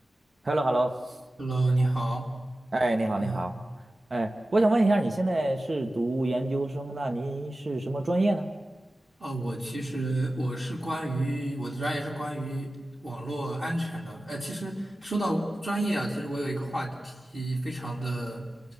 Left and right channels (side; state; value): both; normal; correlation 0.95